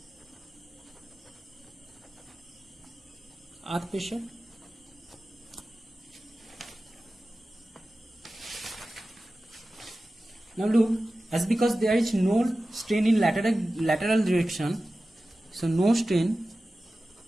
earth pressure. Now look, as because there is no strain in lateral direction, so no strain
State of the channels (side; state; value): both; normal; correlation 0.95